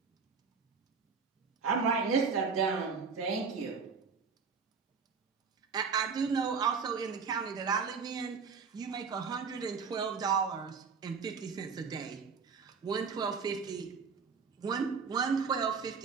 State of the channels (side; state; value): left; quieter; 5.5 dB